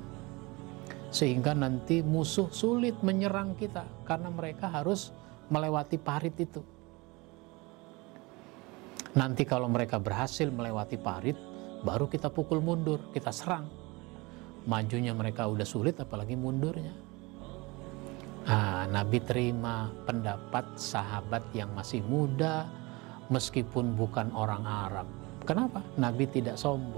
Sehingga nanti musuh sulit menyerang kita, karena mereka harus melewati parit itu. Nanti kalau mereka berhasil melewati parit, baru kita pukul mundur, kita serang. Majunya mereka udah sulit, apalagi mundurnya. Nabi terima pendapat sahabat yang masih muda, meskipun bukan orang Arab. Kenapa? Nabi tidak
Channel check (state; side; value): quieter; left; 24.7 dB